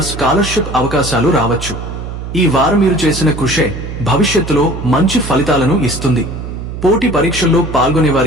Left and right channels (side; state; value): right; noise; hum, 8 dB below the sound